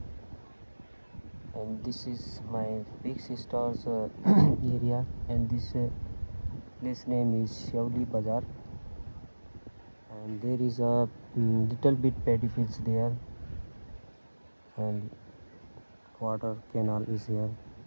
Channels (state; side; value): inverted; both; correlation -1.00